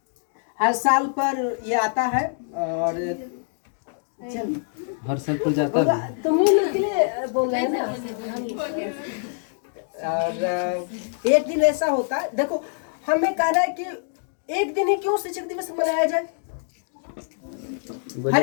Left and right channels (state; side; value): silent; right; digital silence